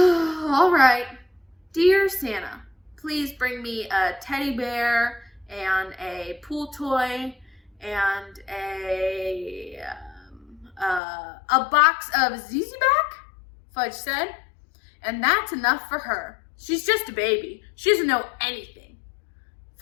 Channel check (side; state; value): right; drops out; at 11.0 s